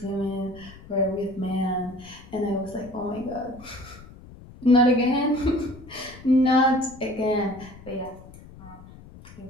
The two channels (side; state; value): left; noise; rumble, 19 dB below the sound